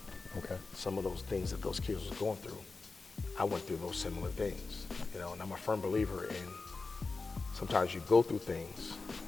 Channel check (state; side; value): quieter; right; 4.0 dB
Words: Okay. Some of those things that those kids was going through, I went through those similar things, and I'm a firm believer in sometimes you go through things